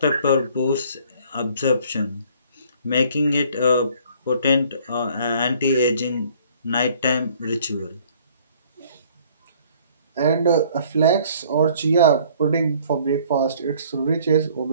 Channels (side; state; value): both; inverted; correlation -0.57